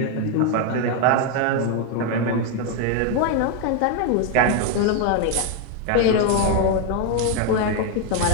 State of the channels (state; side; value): different; both; correlation 0.01